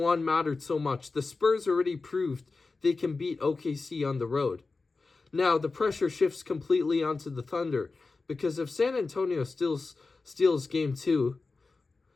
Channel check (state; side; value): quieter; right; 3.9 dB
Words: mattered so much. The Spurs already proved they can beat OKC on the road. Now, the pressure shifts completely onto the Thunder, because if San Antonio steals game two,